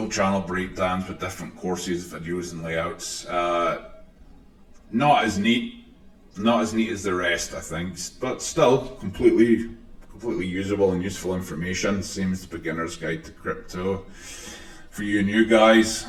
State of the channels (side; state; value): both; identical; correlation 1.00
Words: channel breakdowns with different courses, videos and layouts. Not as neat as the rest, I think, but still completely usable and useful information. Same as the beginner's guide to crypto. For you new guys,